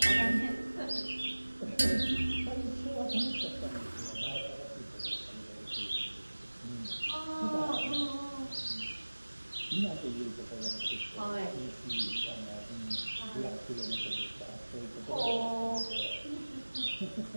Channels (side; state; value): both; inverted; correlation -1.00